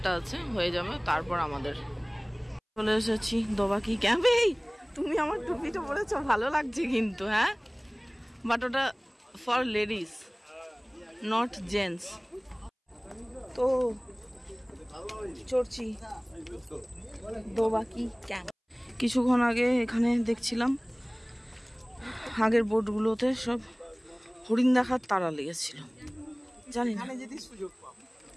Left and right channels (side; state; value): both; identical; correlation 1.00